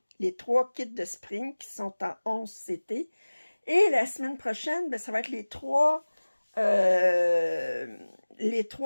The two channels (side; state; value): both; inverted; correlation -1.00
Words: kits de Spring qui sont en 11 CT. Et la semaine prochaine, ben, ça va être les 3